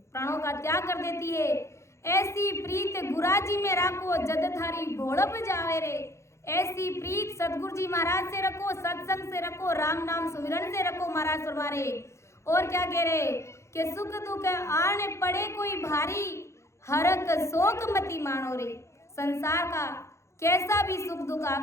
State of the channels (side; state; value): right; late; 0.14 ms